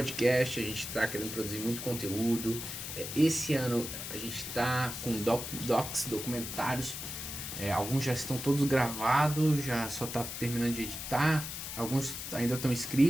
a gente está querendo produzir muito conteúdo. Esse ano a gente está com documentários. Alguns já estão todos gravados, já só tá terminando de editar. Alguns ainda estão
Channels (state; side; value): noise; left; hiss, 7 dB below the sound